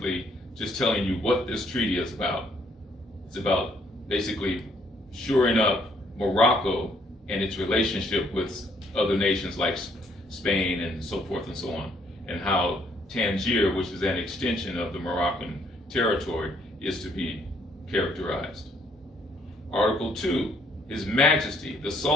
just telling you what this treaty is about. It's about basically shoring up Morocco and its relationship with other nations like Spain and so forth and so on, and how Tangier, which is an extension of the Moroccan territory, is to be characterized. Article 2, His Majesty, the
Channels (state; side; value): normal; both; correlation 0.67